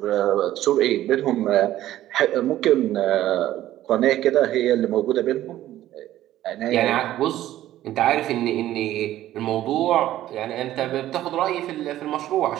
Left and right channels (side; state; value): left; quieter; 13.7 dB